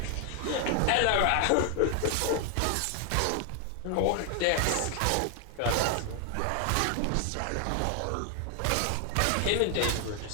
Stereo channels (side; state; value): both; different; correlation 0.00